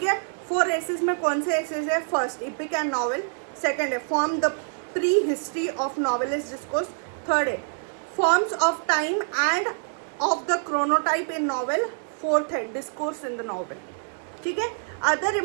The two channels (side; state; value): left; silent; digital silence